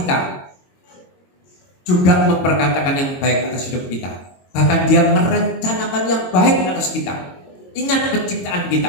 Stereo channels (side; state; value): right; late; 22 ms